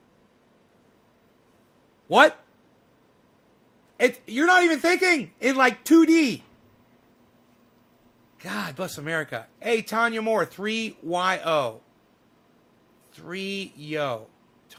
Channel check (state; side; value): identical; both; correlation 1.00